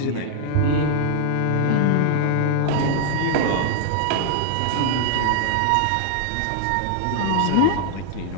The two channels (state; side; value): different; both; correlation -0.01